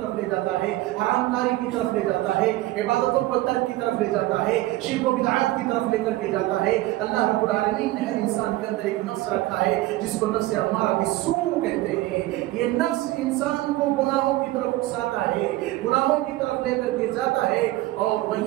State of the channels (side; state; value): left; quieter; 17.4 dB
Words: لے جاتا ہے، حرام کاری کی طرف لے جاتا ہے، عبادتوں کو ترک کی طرف لے جاتا ہے، شرک و بدعات کی طرف لے کر کے جاتا ہے. اللہ رب العالمین نے ہر انسان کے اندر ایک نفس رکھا ہے جس کو نفس امارہ بالسوء کہتے ہیں. یہ نفس انسان کو گناہوں کی طرف اکساتا ہے، گناہوں کی طرف لے کر کے جاتا ہے. اور